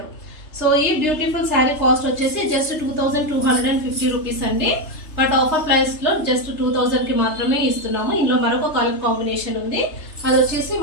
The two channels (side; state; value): right; late; 3.3 ms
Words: సో ఈ బ్యూటిఫుల్ శారీ కాస్ట్ వచ్చేసి జస్ట్ 2250 రూపీస్ అండి. బట్ ఆఫర్ ప్రైస్ లో జస్ట్ 2000 కి మాత్రమే ఇస్తున్నాము. ఇందులో మరొక కలర్ కాంబినేషన్ ఉంది, అది వచ్చేసి